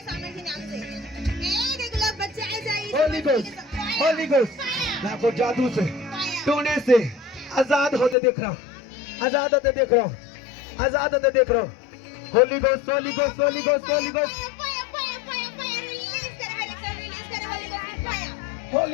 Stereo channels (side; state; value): right; drops out; at 8.2 s